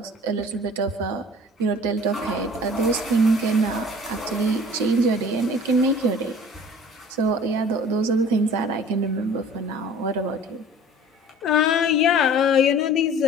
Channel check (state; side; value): normal; both; correlation 0.46